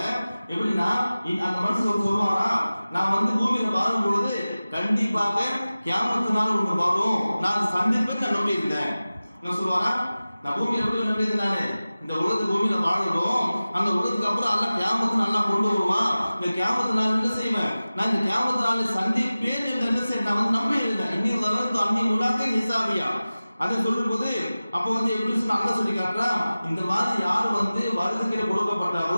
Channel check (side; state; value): both; inverted; correlation -0.96